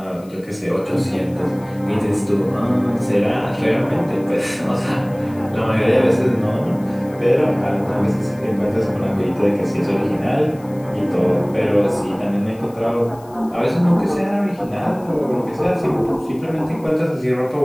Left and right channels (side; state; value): left; noise; hiss, 27 dB below the sound